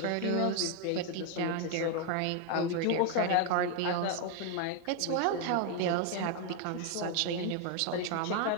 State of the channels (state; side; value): different; both; correlation 0.01